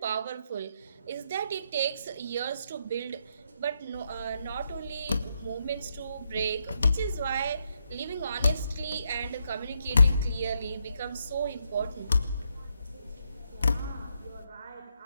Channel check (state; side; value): inverted; both; correlation -0.79